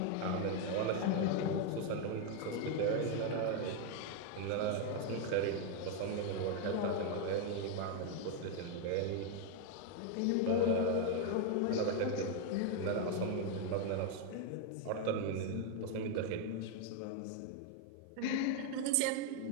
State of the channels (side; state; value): both; different; correlation 0.01